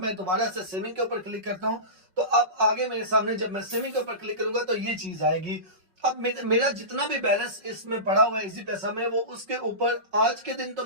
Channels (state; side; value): late; left; 5.4 ms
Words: मैं दोबारा से सेविंग के ऊपर क्लिक करता हूँ, तो अब आगे मेरे सामने जब मैं सेविंग के ऊपर क्लिक करूंगा तो ये चीज आएगी। अब मेरा जितना भी बैलेंस इसमें पड़ा हुआ है इजी पैसा में, वो उसके ऊपर आज के दिन तो